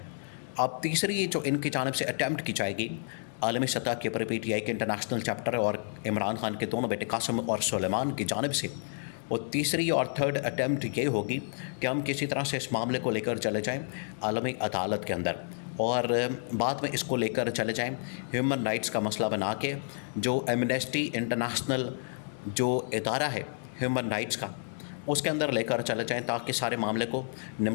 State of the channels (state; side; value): silent; right; digital silence